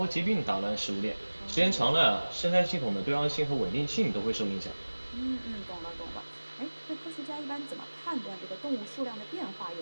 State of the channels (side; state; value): both; inverted; correlation -1.00